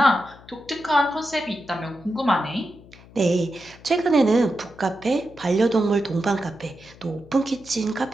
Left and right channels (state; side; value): noise; left; hum, 22 dB below the sound